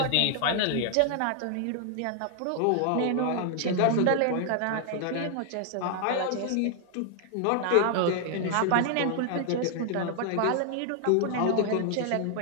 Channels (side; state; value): both; different; correlation 0.00